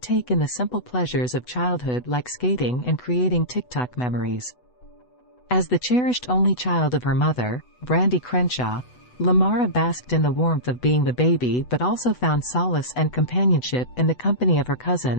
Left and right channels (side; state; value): right; late; 8.0 ms